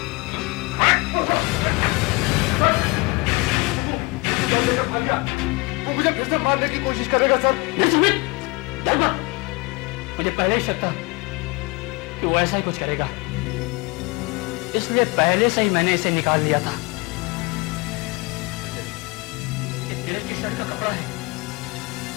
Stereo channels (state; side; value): quieter; right; 26.6 dB